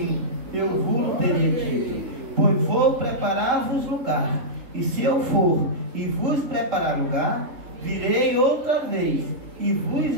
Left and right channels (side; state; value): left; late; 3.7 ms